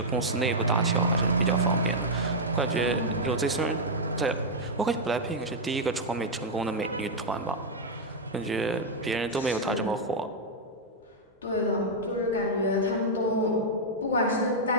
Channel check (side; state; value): both; normal; correlation -0.04